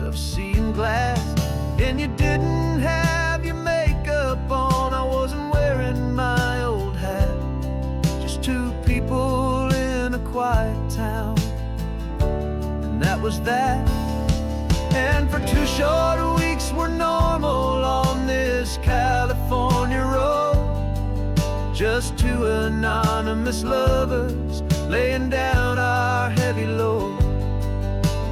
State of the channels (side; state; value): both; identical; correlation 1.00